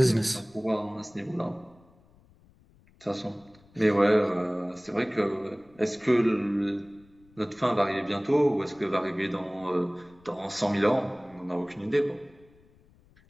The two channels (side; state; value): left; noise; rumble, 29 dB below the sound